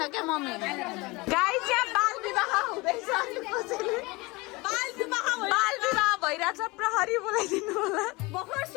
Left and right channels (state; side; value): quieter; right; 24.0 dB